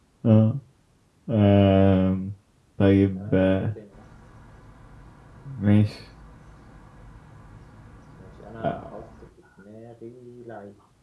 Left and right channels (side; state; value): both; identical; correlation 1.00